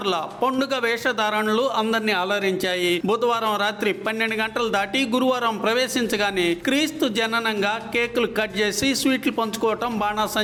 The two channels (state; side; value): identical; both; correlation 1.00